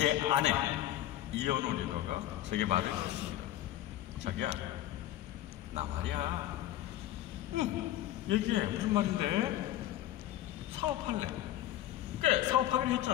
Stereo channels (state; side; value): quieter; right; 13.4 dB